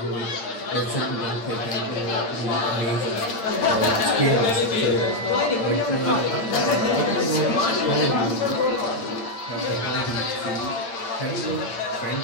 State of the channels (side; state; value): right; late; 8.7 ms